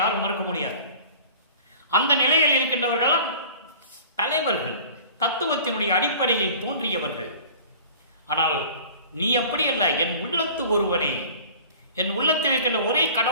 யாரும் மறுக்க முடியாது. அந்த நிலையில் இருக்கின்றவர்கள் தலைவர்கள், தத்துவத்தினுடைய அடிப்படையில் தோன்றியவர்கள். ஆனால் நீ அப்படி அல்ல, என் உள்ளத்து ஒருவனே, என் உள்ளத்தில் இருக்கின்ற ஒரே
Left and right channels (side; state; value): both; inverted; correlation -0.43